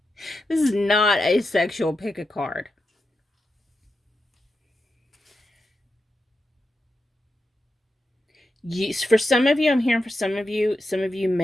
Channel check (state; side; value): normal; both; correlation 0.88